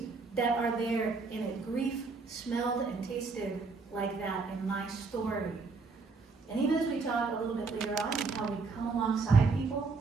that are there in it. Grief smelled and tasted like that in my story. And even as we talk a little bit later on and how we come alongside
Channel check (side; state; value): left; quieter; 4.2 dB